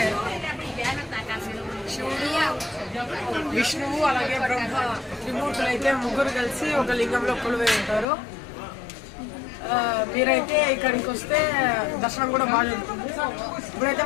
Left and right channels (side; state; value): right; drops out; at 8.1 s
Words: శివుడు, విష్ణువు అలాగే బ్రహ్మ త్రిమూర్తులు అయితే ముగ్గురు కలిసి ఒక లింగంలో కొలువై ఉంటారు. మీరైతే ఇక్కడికి వస్తే దర్శనం కూడా బాగా జరుగుతుంది. ఇప్పుడైతే